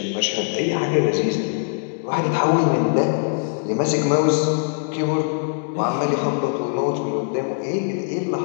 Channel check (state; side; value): silent; right; digital silence